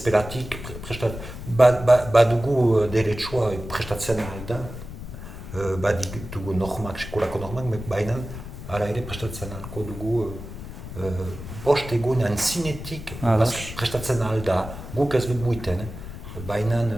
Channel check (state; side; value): noise; left; rumble, 11 dB below the sound